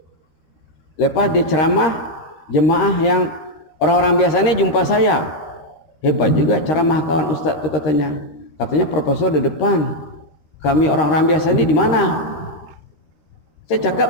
Lepas dia ceramah, jemaah yang orang-orang biasanya jumpa saya. Hebat juga ceramah kawan ustaz itu, katanya. Katanya profesor di depan. Kami orang-orang biasa ini di mana? Saya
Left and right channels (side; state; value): right; late; 13 ms